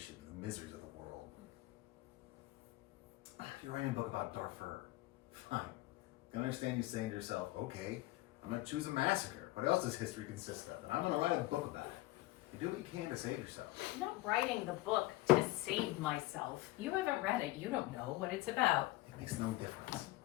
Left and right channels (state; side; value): quieter; right; 19.0 dB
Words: the miseries of the world. If you're writing a book about Darfur, fine. I can understand you saying to yourself, okay, I'm going to choose a massacre. What else does history consist of? And I'm going to write a book about it. You do what you can to save yourself. I'm not writing the book to save myself. You haven't read it. You don't know what it's about. It makes no difference.